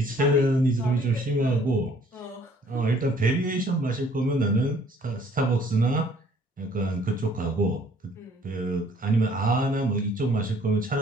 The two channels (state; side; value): normal; both; correlation 0.59